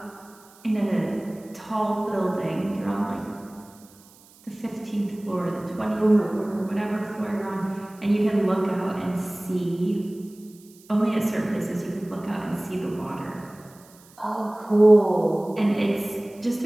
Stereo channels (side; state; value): right; noise; hiss, 26 dB below the sound